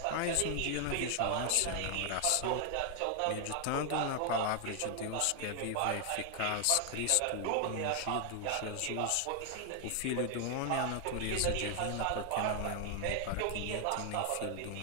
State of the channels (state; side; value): different; both; correlation 0.00